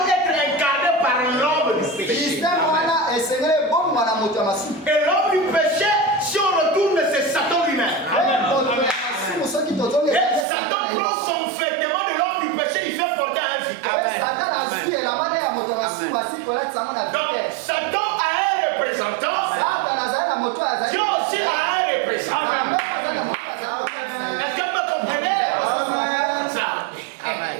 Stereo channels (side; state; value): left; drops out; at 10.5 s